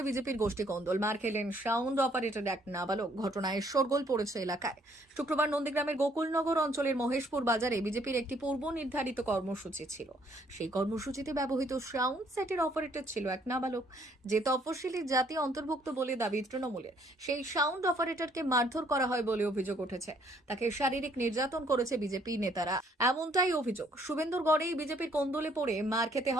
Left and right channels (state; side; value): normal; both; correlation 0.65